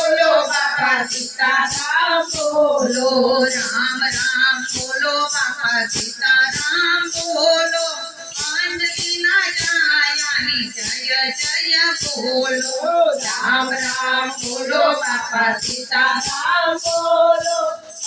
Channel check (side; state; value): both; identical; correlation 1.00